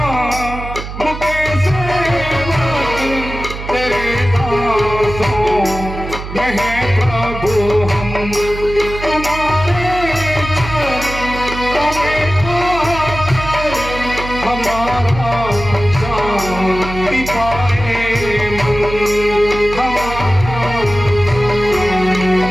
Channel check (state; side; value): noise; right; hum, 9 dB below the sound